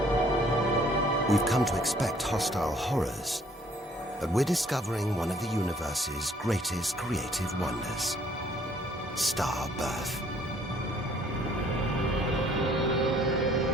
We've come to expect hostile horrors, but we're discovering one of the universe's greatest creative wonders: star birth.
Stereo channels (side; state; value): both; normal; correlation 0.61